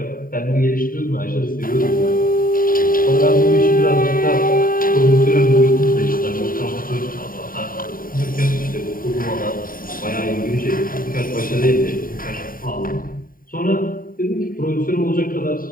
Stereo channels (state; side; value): late; right; 0.41 ms